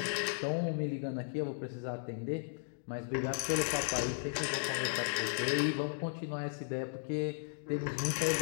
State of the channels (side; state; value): right; silent; digital silence